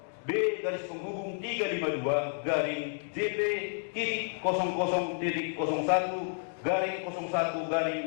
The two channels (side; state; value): right; silent; digital silence